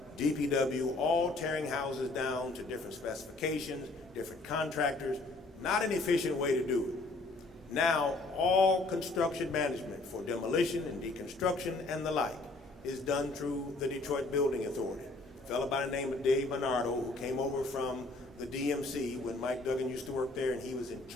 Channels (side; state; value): right; quieter; 3.2 dB